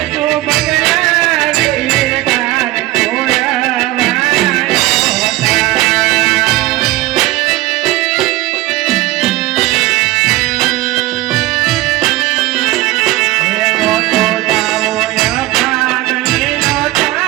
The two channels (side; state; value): left; quieter; 17.8 dB